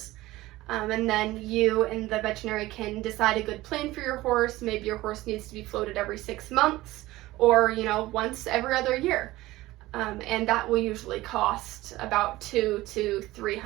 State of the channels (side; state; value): left; quieter; 17.8 dB